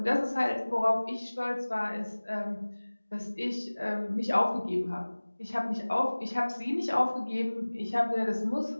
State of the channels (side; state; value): both; inverted; correlation -1.00